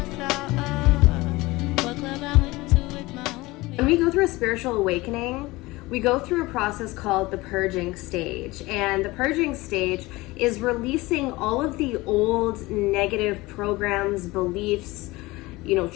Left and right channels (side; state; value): right; quieter; 20.9 dB